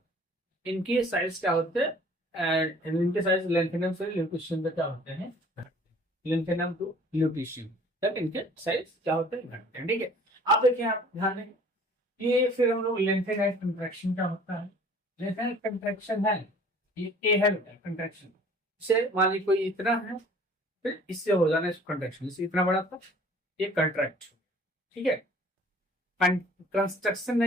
इनके साइज क्या होते हैं? इनके साइज lanthanum से lutetium पे क्या होते हैं? lanthanum to lutetium तक इनके साइज क्या होते हैं? घटते हैं। ठीक है, आप देखिए, आप ध्यान दें, ये फिर हम लोग lanthanide contraction क्या होता है? lanthanide contraction है, ये ए है बेटा contraction। इसे मान लीजिए कोई इतना है, फिर इससे हो जाना इसको कंट्रैक्शन, इससे इतना बड़ा था, ये कंट्रैक्ट। ठीक है, कंस्ट्रक्शन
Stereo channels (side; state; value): both; normal; correlation 0.52